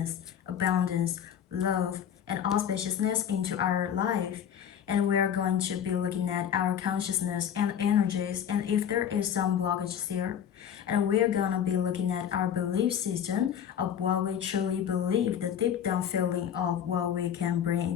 abundance, love, and auspiciousness into our life. And we're going to be looking at our consciousness and energies and if there is some blockages there. And we're gonna be looking at our belief system of what we truly believe, the deep down feeling of what we can bring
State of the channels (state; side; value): quieter; right; 9.0 dB